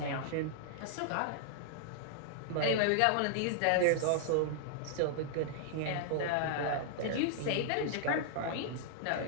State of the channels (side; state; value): both; different; correlation -0.01